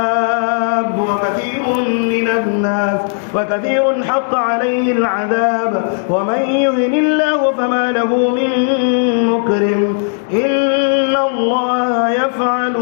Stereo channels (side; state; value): right; silent; digital silence